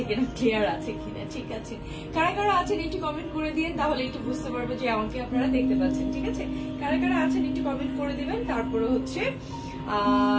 কিনা, ক্লিয়ার আছে কিনা। ঠিক আছে, কারা কারা আছেন একটু কমেন্ট করে দিবেন, তাহলে একটু বুঝতে পারবো যে আমাকে আপনারা দেখতে পাচ্ছেন। ঠিক আছে, কারা কারা আছেন একটু কমেন্ট করে দিবেন। তারপরে হচ্ছে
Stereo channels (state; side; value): identical; both; correlation 1.00